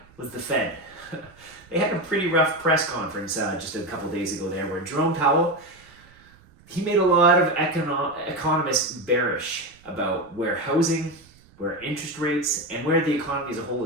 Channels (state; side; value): noise; right; rumble, 27 dB below the sound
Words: was the Fed. They had a pretty rough press conference just a couple days ago there, where Jerome Powell, he made a lot of economists bearish about where housing, where interest rates, and where the economy as a whole